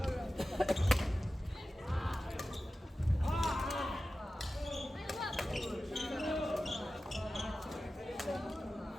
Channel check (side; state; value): both; normal; correlation 0.94